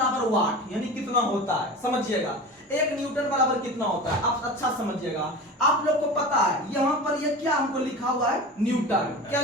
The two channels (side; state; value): both; normal; correlation 0.32